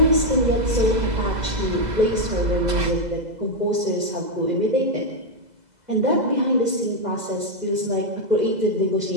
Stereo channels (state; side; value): late; left; 2.0 ms